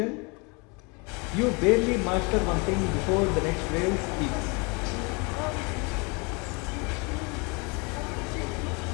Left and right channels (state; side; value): quieter; right; 30.4 dB